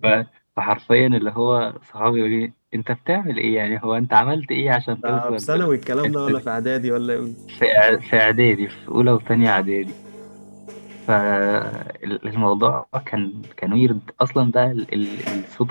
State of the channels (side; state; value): both; inverted; correlation -1.00